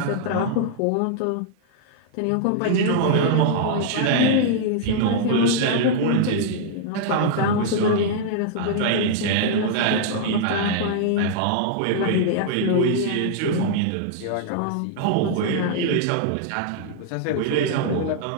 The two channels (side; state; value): both; different; correlation -0.01